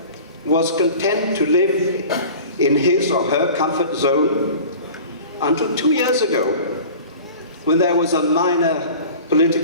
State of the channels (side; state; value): both; inverted; correlation -0.40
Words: was content to live in his or her comfort zone until 2 years ago, when there was a minor